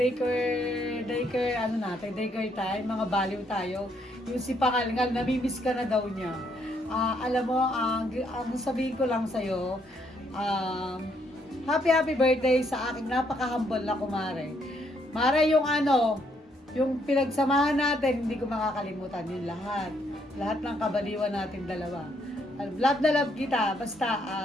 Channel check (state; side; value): normal; both; correlation 0.72